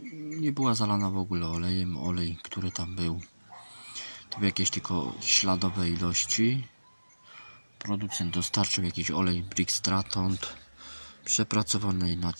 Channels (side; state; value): both; inverted; correlation -1.00